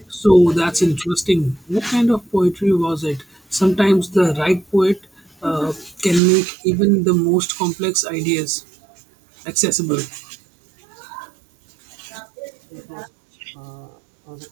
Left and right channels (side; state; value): left; drops out; at 6.2 s